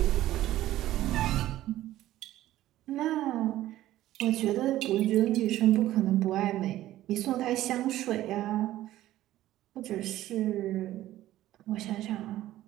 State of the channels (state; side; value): quieter; left; 14.5 dB